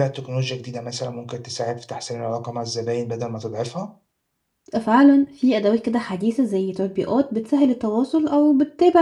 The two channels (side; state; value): both; identical; correlation 1.00